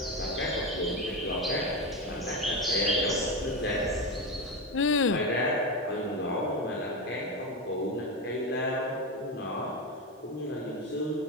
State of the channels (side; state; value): both; normal; correlation 0.15